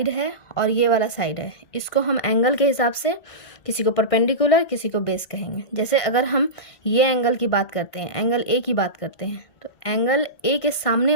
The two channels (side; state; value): right; late; 1.8 ms